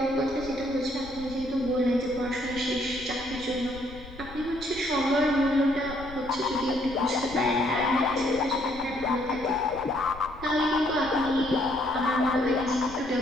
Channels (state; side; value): noise; left; rumble, 16 dB below the sound